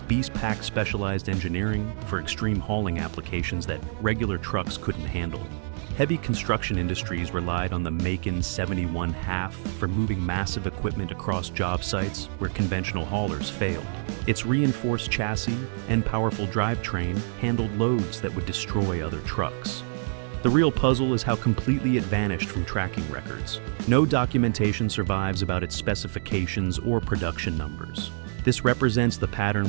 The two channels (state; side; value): silent; left; digital silence